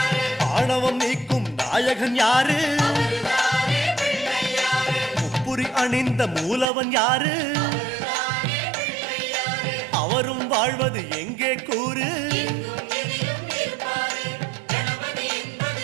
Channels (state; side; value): drops out; left; at 6.7 s